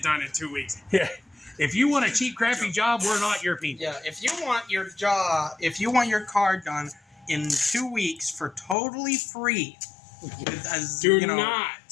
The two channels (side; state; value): right; drops out; at 8.8 s